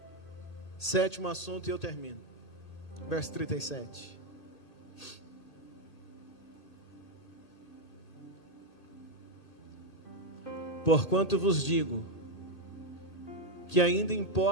Sétimo assunto e eu termino. Verso 37. Porquanto vos digo, que ainda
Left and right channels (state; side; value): late; right; 2.5 ms